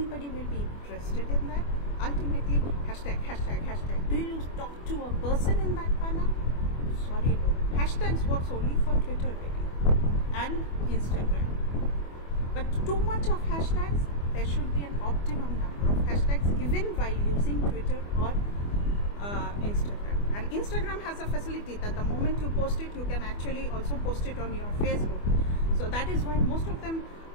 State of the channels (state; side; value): late; right; 24 ms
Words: will be interested in that? Ultimately, hashtag. Do you talk to a person in that manner? Sorry, no. Hashtags works only for Twitter really and Instagram. But too much of hashtags, there should be an optimum number of hashtags even while using Twitter or Instagram. And Instagram has a facility that the moment you post it, you can actually also post it on your Facebook. So that is why most of them